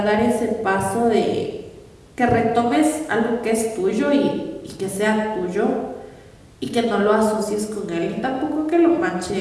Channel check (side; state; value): both; identical; correlation 1.00